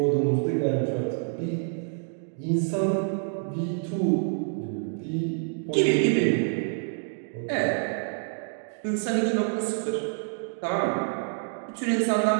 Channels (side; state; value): left; silent; 60 dB below the other